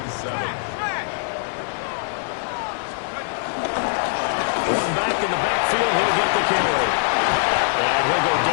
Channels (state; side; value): silent; right; 59 dB below the other